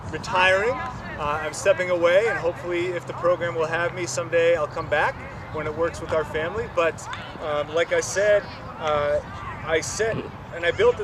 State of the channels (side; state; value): both; identical; correlation 1.00